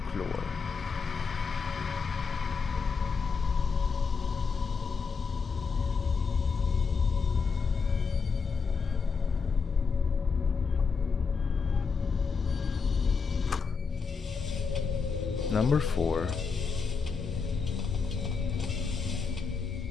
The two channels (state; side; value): quieter; right; 5.3 dB